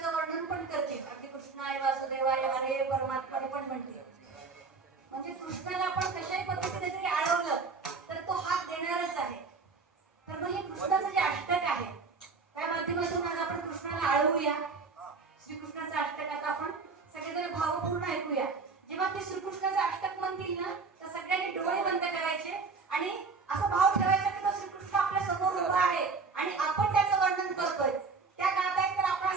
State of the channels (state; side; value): quieter; left; 4.6 dB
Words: वर्णन पण करते. अगदी कृष्णाय वासुदेवाय हरे परमात्माने पण म्हटले. म्हणजे कृष्णाला आपण कशाही पद्धतीने जरी आळवलं तर तो हात देणारच आहे. तर मग हे कृष्णाचं जे अष्टक आहे त्या माध्यमातून आज आपण कृष्णाला आळवूया. श्रीकृष्णाचं अष्टक आता आपण सगळेजण भावपूर्ण ऐकूया. जेव्हा ते श्रीकृष्णाचं अष्टक म्हणतील ना तर सगळ्यांनी डोळे बंद करायचे आणि असा भाव ठेवायचा की तो श्रीकृष्ण आपल्या समोर उभा आहे आणि आपण त्याचं वर्णन करतोय. त्या गात आहेत तर आपण